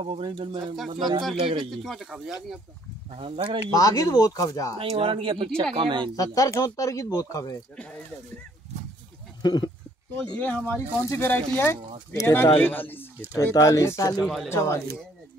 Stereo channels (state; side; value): normal; both; correlation 0.63